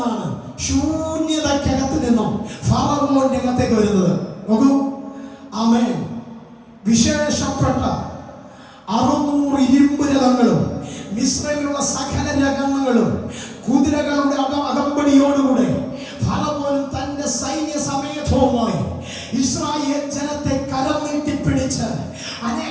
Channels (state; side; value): identical; both; correlation 1.00